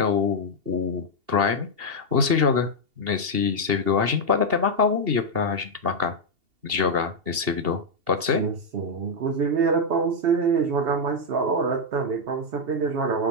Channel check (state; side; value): late; left; 2.8 ms